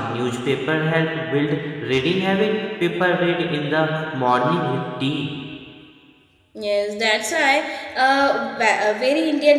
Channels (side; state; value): both; identical; correlation 1.00